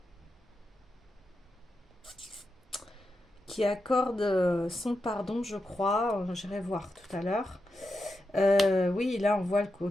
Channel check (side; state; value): both; normal; correlation 0.88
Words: son pardon, je crois. J'irai voir tout à l'heure. Oui, là on voit le